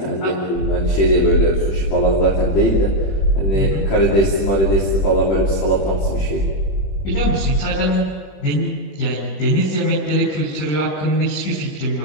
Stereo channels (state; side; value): late; right; 20 ms